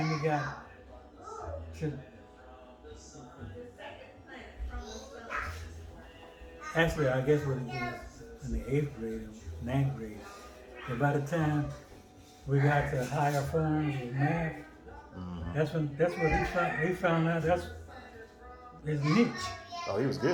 he got to actually, I guess when he was in the 8th grade or 9th grade. But by the time we got to higher forms of math, that's what he found out that's his niche. Oh, he was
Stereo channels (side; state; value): both; identical; correlation 1.00